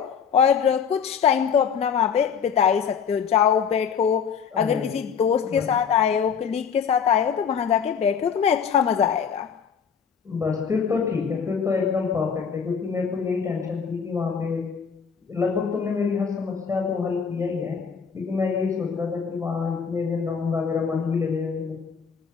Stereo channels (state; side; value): quieter; right; 6.8 dB